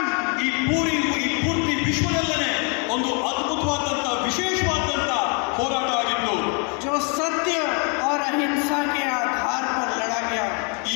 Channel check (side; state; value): right; quieter; 36.1 dB